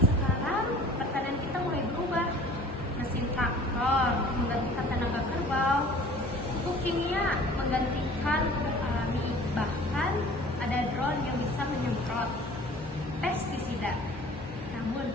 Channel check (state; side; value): normal; both; correlation 0.47